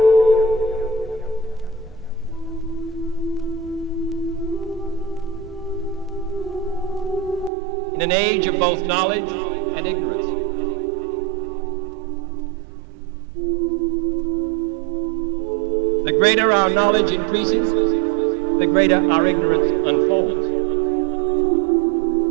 In an age of both knowledge and ignorance. The greater our knowledge increases, the greater our ignorance unfolds.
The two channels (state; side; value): drops out; left; at 7.5 s